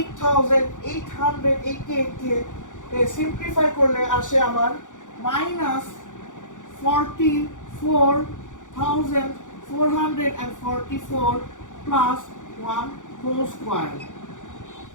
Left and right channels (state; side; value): late; right; 0.87 ms